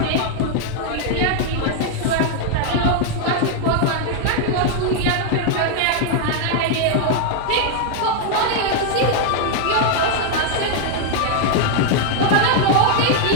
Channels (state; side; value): different; both; correlation 0.00